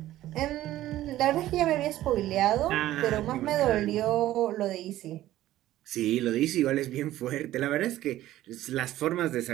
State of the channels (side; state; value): left; quieter; 14.4 dB